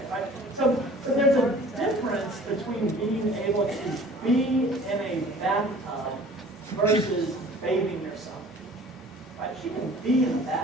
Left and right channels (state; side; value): normal; both; correlation 0.48